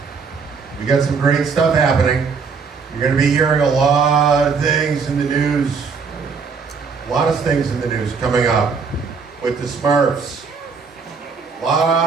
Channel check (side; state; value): left; quieter; 5.3 dB